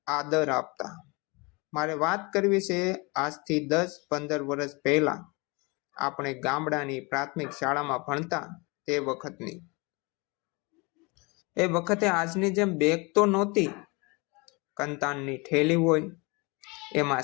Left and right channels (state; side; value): quieter; right; 27.8 dB